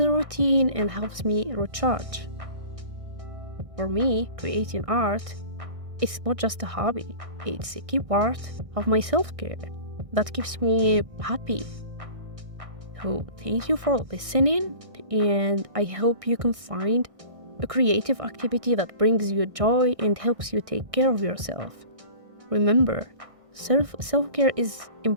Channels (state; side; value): late; left; 1.6 ms